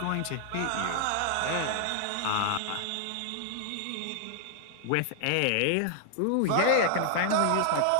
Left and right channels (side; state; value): both; different; correlation 0.00